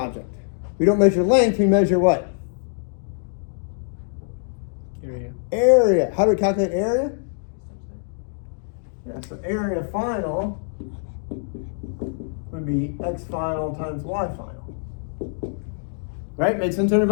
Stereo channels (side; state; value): right; silent; digital silence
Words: We don't measure length, we measure what? Area. Area. How do we calculate area? Yeah, so area final would be X final times Y final. Right? Make sense to